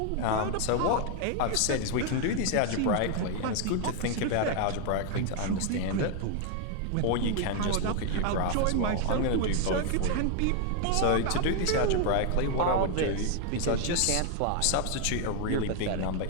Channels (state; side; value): different; both; correlation 0.00